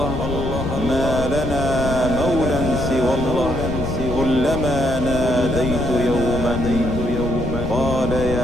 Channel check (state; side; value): noise; left; rumble, 5 dB below the sound